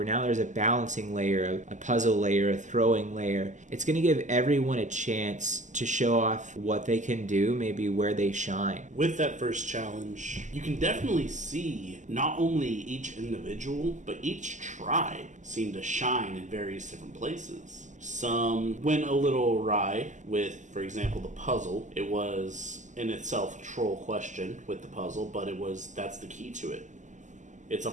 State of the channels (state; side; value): late; left; 0.35 ms